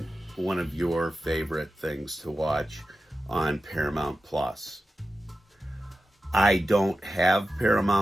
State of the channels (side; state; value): both; normal; correlation 0.93